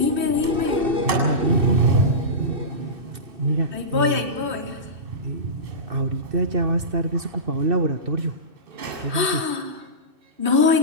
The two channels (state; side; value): late; left; 2.6 ms